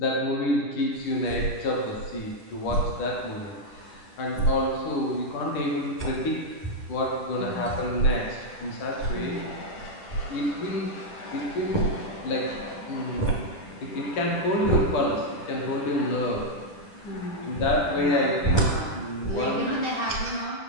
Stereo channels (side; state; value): right; late; 10 ms